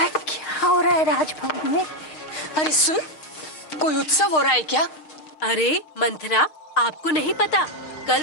क्या हो रहा है राजभवन में? अरे सुन, कोई उत्सव हो रहा है क्या? अरे मंथरा, आपको नहीं पता, कल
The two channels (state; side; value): late; right; 6.5 ms